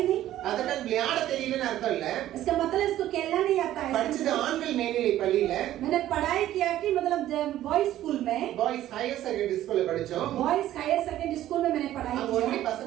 नहीं. அதனால விளையாட தெரியலன்னு அர்த்தம் இல்ல. इसका मतलब इसको खेलना नहीं आता है. படிச்சது ஆண்கள் மேல்நிலை பள்ளியில. मैंने पढ़ाई किया कि मतलब बॉयज स्कूल में, பாய்ஸ் ஹையர் செகண்டரி ஸ்கூல்ல படிச்சோம். बॉयज हायर सेकेंडरी स्कूल में मैंने पढ़ाई அங்க ஒன்லி किया.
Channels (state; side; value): quieter; left; 13.3 dB